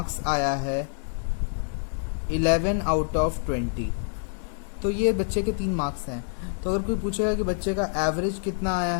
आया है 11 आउट ऑफ 20। तो ये बच्चे के 3 मार्क्स हैं। तो अगर कोई पूछेगा कि बच्चे का एवरेज कितना आया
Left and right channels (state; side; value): silent; right; 60 dB below the other